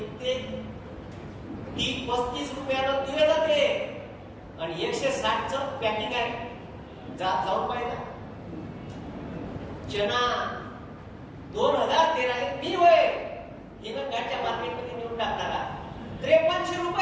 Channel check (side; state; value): both; identical; correlation 1.00